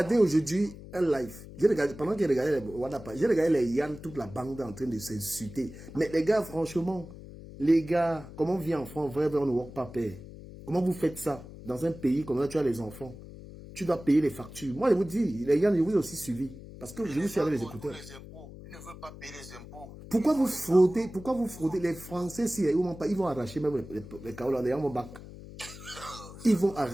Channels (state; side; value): noise; left; hum, 15 dB below the sound